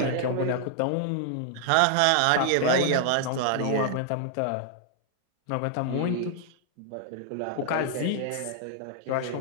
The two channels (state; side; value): different; both; correlation 0.00